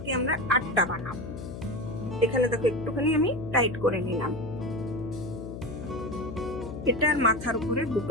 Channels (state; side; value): noise; left; hum, 9 dB below the sound